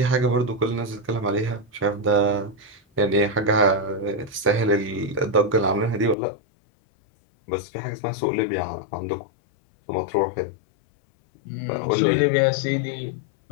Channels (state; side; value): drops out; right; at 6.2 s